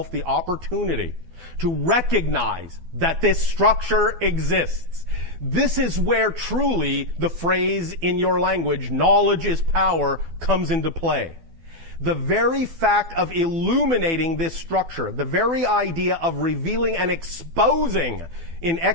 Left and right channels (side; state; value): left; late; 12 ms